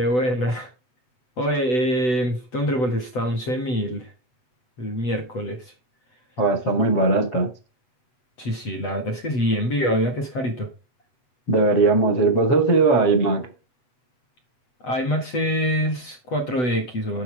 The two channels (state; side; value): late; right; 8.0 ms